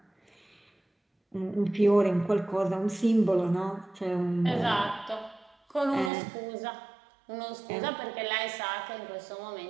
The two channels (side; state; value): left; drops out; at 6.1 s